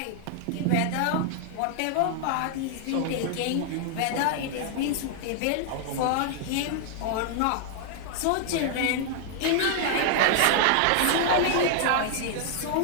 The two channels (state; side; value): different; both; correlation 0.00